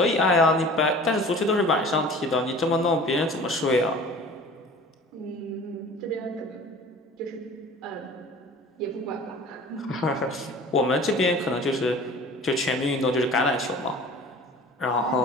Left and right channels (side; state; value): both; normal; correlation 0.43